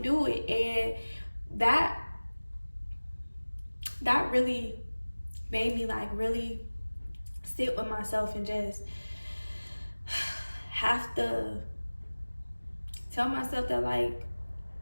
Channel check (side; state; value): both; inverted; correlation -1.00